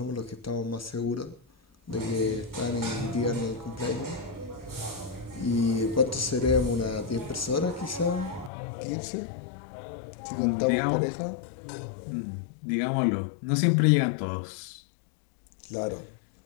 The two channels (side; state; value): right; drops out; at 8.5 s